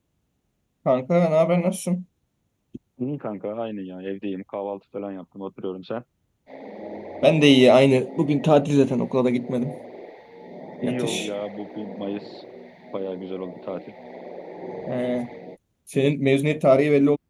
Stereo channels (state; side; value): identical; both; correlation 1.00